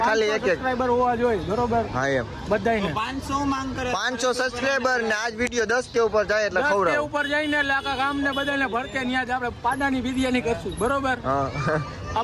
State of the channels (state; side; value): identical; both; correlation 1.00